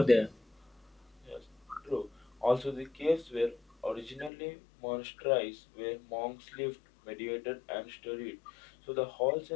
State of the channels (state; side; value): drops out; right; at 4.3 s